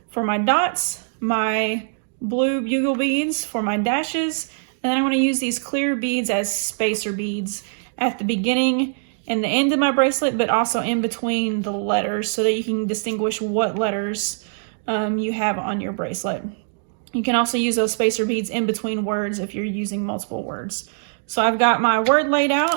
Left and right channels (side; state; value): left; silent; digital silence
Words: for my dots, my blue bugle beads for my dashes, and then I'm going to use these clear beads as spacer beads at the beginning and the end of my bracelet, but also in between the letters so that you can distinguish what letters you have on your bracelet. You can also use those spacer beads in between words if you're using multiple words. So I've got my word laid